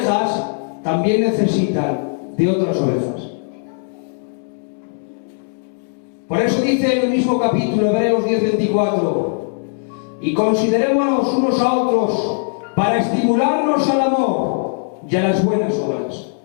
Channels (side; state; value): right; silent; digital silence